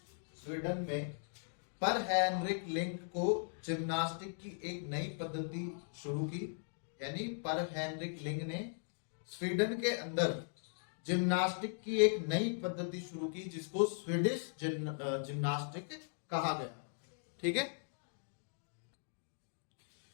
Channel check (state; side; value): silent; right; digital silence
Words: स्वीडन में पर हेनरिक लिंक को जिम्नास्टिक की एक नई पद्धति शुरू की। यानी पर हेनरिक लिंक ने स्वीडन के अंदर जिम्नास्टिक की एक नई पद्धति शुरू की जिसको स्वीडिश जिम्नास्टिक कहा गया। ठीक है।